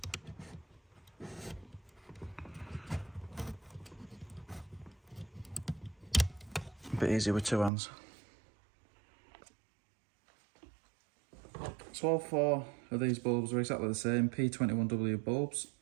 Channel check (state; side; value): drops out; left; at 7.7 s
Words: A bit easier with 2 hands. So all 4 of these bulbs are exactly the same, P21W bulbs.